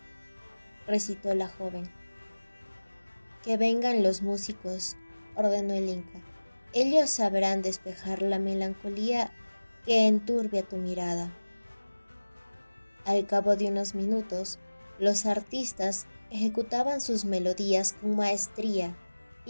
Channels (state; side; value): inverted; both; correlation -1.00